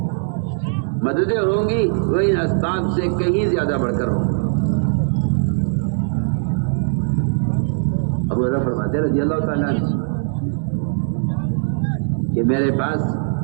مددیں ہوں گی وہ ان اسباب سے کہیں زیادہ بڑھ کر ہوں۔ ابو ہریرہ فرماتے رضی اللہ تعالیٰ عنہ کہ میرے پاس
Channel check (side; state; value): left; silent; digital silence